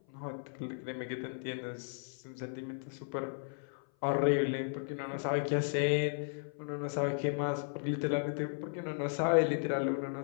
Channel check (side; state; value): right; silent; 54 dB below the other